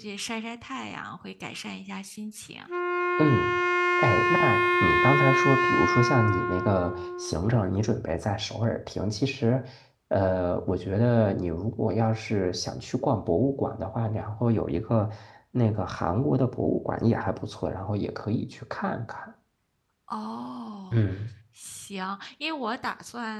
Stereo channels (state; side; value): identical; both; correlation 1.00